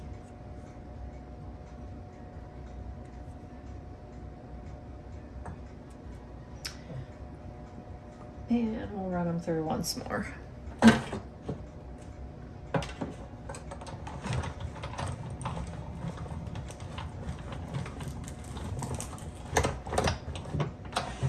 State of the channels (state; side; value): identical; both; correlation 1.00